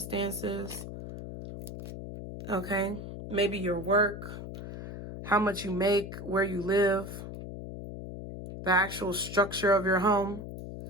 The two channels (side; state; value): left; noise; hum, 9 dB below the sound